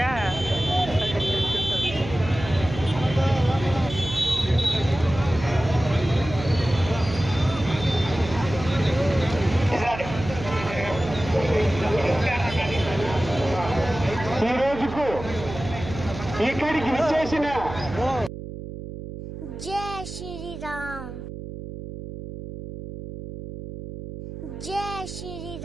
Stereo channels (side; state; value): right; noise; hum, 10 dB below the sound